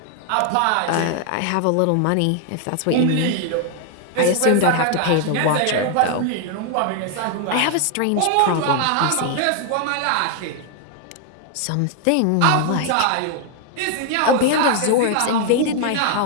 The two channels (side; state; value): both; different; correlation 0.00